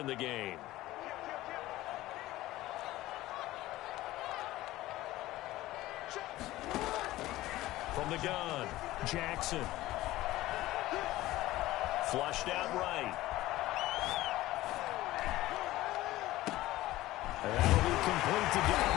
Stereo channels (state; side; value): quieter; right; 16.7 dB